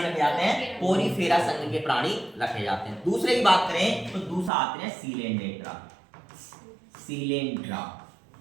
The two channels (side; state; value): left; drops out; at 4.5 s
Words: रखे जाते हैं? पोरीफेरा संघ के प्राणी रखे जाते हैं। दूसरे की बात करें तो दूसरा आते हैं सीलेंड्रेटा। सीलेंड्रा,